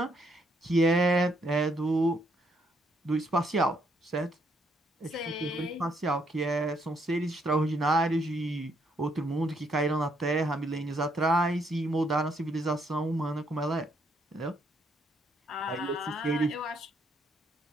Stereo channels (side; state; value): both; normal; correlation 0.73